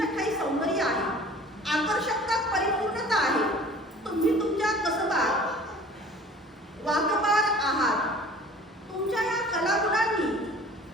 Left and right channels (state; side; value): normal; both; correlation 0.47